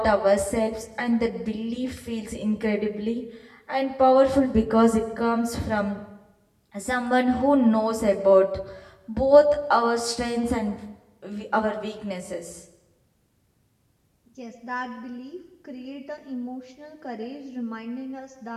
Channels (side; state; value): both; identical; correlation 1.00